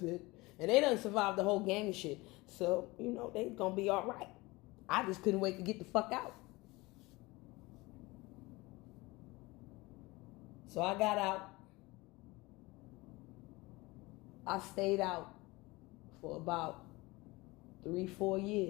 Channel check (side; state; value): right; quieter; 22.3 dB